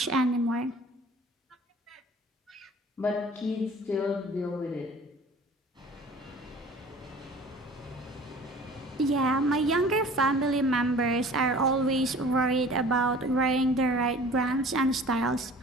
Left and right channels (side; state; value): both; normal; correlation 0.46